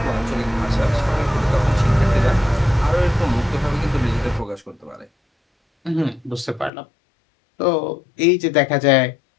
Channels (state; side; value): drops out; right; at 6.7 s